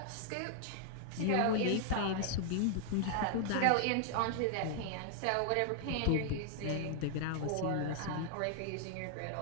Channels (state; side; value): different; both; correlation 0.00